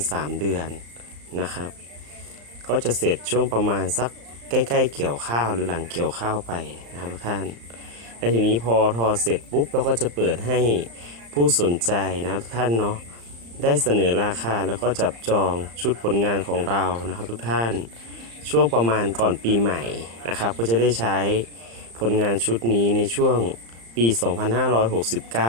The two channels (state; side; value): late; left; 35 ms